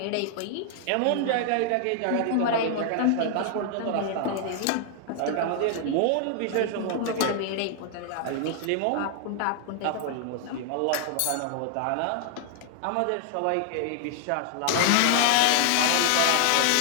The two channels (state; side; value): different; both; correlation 0.00